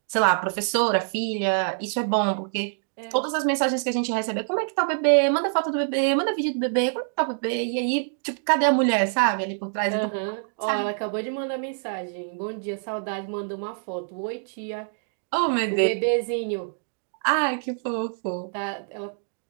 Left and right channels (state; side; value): silent; left; digital silence